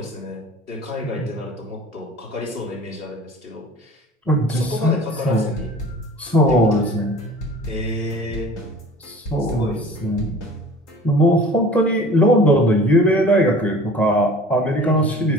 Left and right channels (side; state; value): both; normal; correlation 0.44